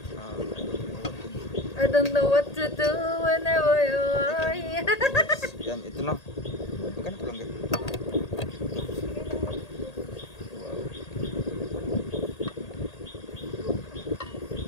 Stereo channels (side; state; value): right; late; 1.8 ms